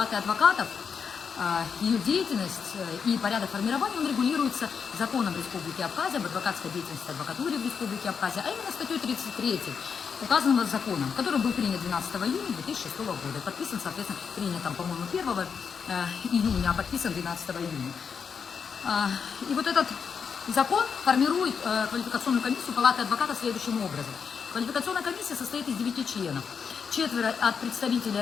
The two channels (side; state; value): right; quieter; 6.3 dB